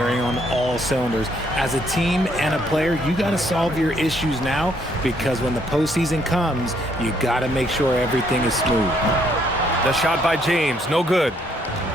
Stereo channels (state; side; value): normal; both; correlation 0.69